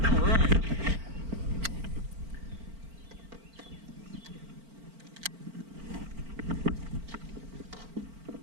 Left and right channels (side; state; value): left; late; 4.4 ms